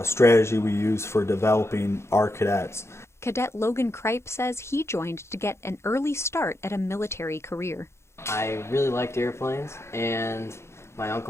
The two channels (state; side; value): late; right; 0.13 ms